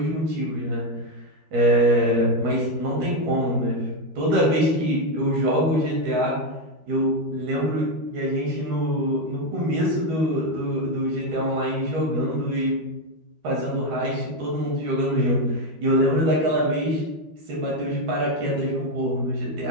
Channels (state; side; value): late; left; 13 ms